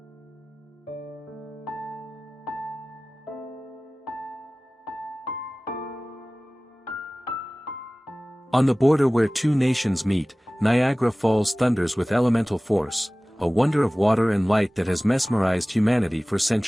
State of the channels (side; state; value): both; normal; correlation 0.98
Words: On the border where two nations meet, Niagara Falls thunders with elemental force, a wonder of water and light that has mesmerized humanity for